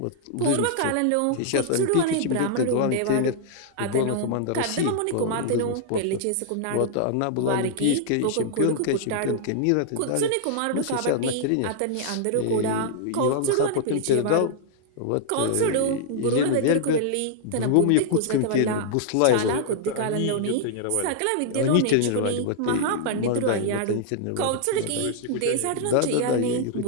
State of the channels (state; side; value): different; both; correlation -0.01